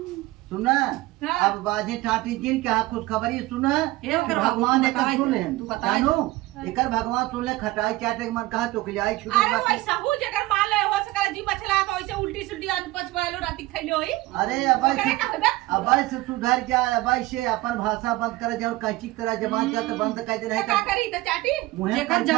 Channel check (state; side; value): quieter; left; 19.1 dB